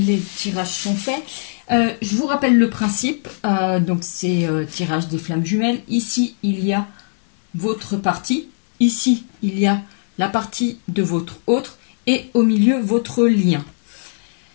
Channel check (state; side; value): silent; right; digital silence